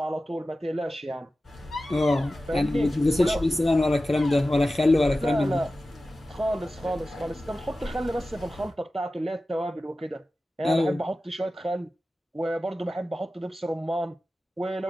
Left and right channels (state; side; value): normal; both; correlation 0.95